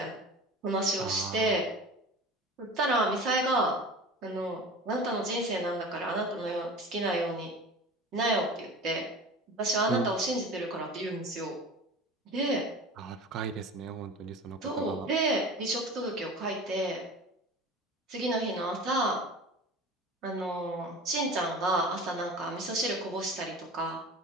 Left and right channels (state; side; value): normal; both; correlation 0.36